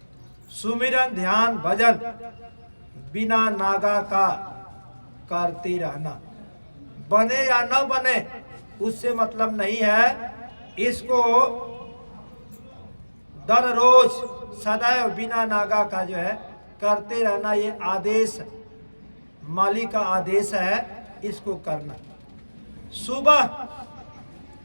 सुमिरन ध्यान भजन बिना नागा का करते रहना, बने या न बने उससे मतलब नहीं है। इसको दर रोज सदैव बिना नागा का जो है करते रहना, ये आदेश मालिक का आदेश है, इसको करना। सुबह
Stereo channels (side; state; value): both; inverted; correlation -1.00